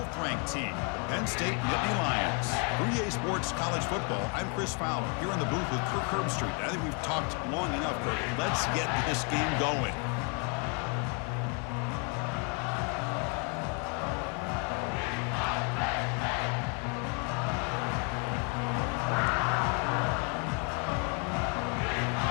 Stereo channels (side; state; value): right; quieter; 36.9 dB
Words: team, Penn State Nittany Lions. For EA Sports College Football, I'm Chris Fowler, here in the booth with Kirk Herbstreit. I think we've talked long enough, Kirk. Let's get this game going.